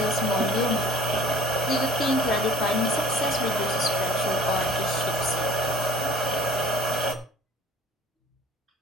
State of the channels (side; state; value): both; normal; correlation 0.49